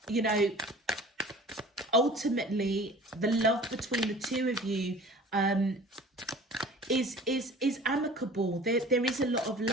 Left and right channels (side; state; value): both; normal; correlation 0.44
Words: you know, ultimately, the love between the two of you is amicable. There is a lot of